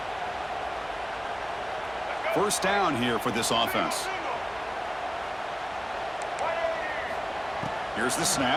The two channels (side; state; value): right; noise; hum, 25 dB below the sound